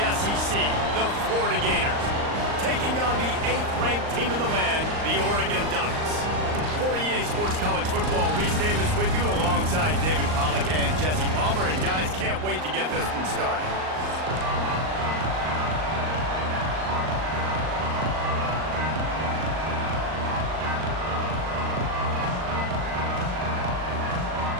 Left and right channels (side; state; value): left; late; 39 ms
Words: SEC, the Florida Gators, taking on the 8th-ranked team in the land, the Oregon Ducks. For EA Sports College Football, Reese Davis with you alongside David Pollack and Jesse Palmer. And guys, can't wait to get this one started.